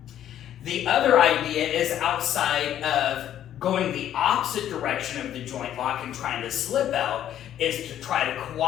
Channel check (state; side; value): quieter; right; 11.0 dB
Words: The other idea is outside of going the opposite direction of the joint lock and trying to slip out, is to try to